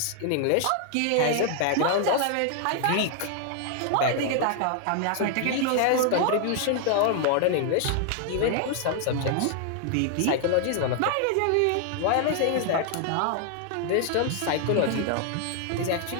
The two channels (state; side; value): different; both; correlation 0.00